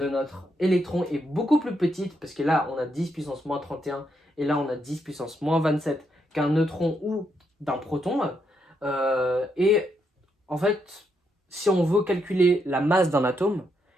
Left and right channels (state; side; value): normal; both; correlation 0.79